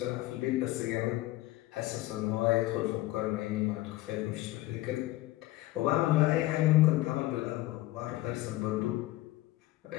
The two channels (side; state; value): right; quieter; 17.4 dB